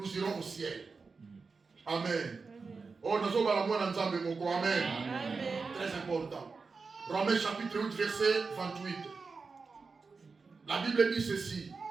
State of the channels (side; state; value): left; quieter; 4.6 dB